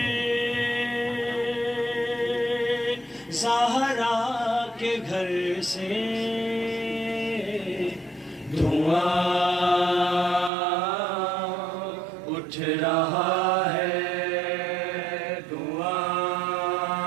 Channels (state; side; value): drops out; left; at 10.5 s